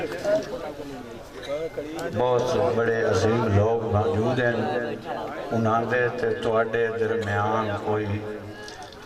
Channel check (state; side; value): identical; both; correlation 1.00